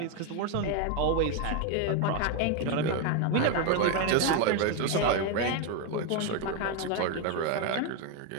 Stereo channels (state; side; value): different; both; correlation 0.02